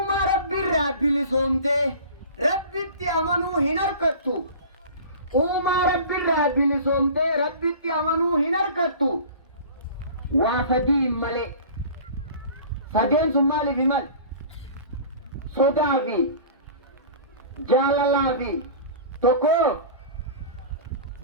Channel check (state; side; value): inverted; both; correlation -0.39